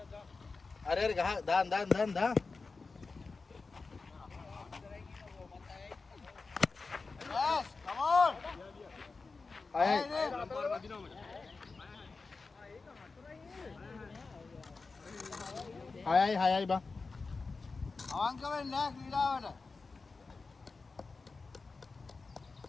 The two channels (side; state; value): right; quieter; 4.2 dB